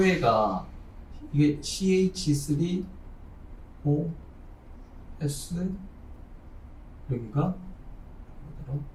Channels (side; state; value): both; identical; correlation 1.00